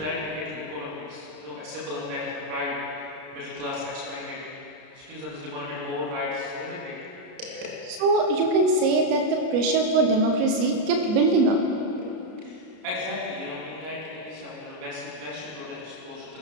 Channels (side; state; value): left; late; 33 ms